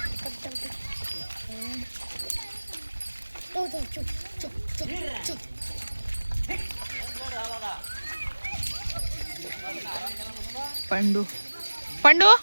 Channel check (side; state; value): both; inverted; correlation -1.00